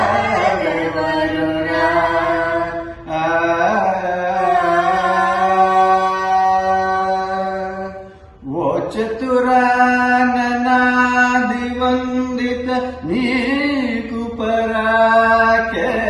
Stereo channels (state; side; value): identical; both; correlation 1.00